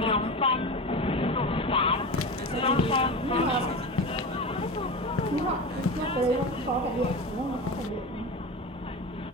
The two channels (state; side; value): normal; both; correlation 0.26